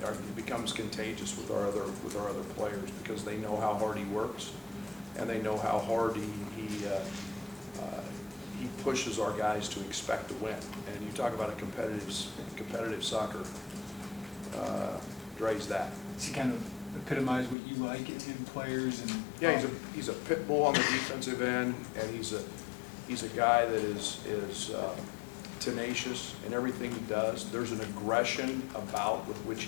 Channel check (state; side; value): drops out; right; at 17.6 s